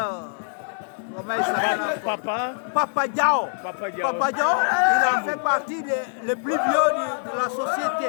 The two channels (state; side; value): silent; right; digital silence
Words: comment il s'appelle? Papa Diao. Papa Diao, il a fait partie des plus vieux